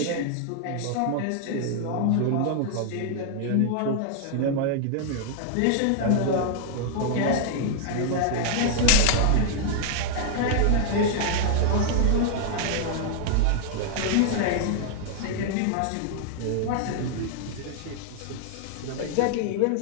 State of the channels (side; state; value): both; different; correlation 0.00